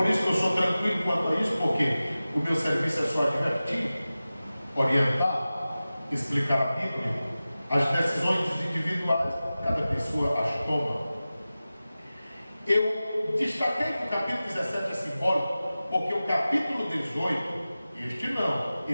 isso que eu sou tranquilo quanto a isso, porque o meu serviço é só advertir, orientar, explicar a Bíblia. As decisões individuais, cada pessoa as toma. Eu destaquei que o capítulo 17 é simbólico, porque o capítulo 18, este não,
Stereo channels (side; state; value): both; inverted; correlation -0.96